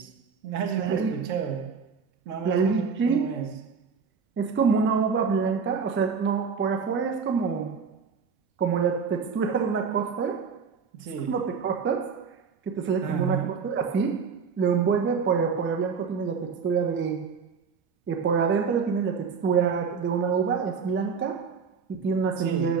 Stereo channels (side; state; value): left; quieter; 5.8 dB